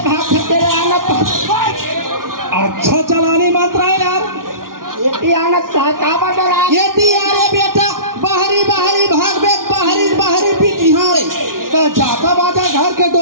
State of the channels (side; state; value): left; late; 0.90 ms